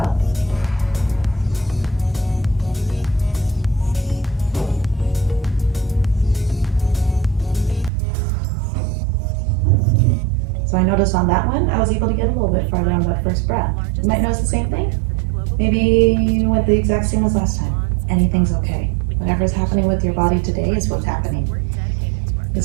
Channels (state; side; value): drops out; left; at 7.9 s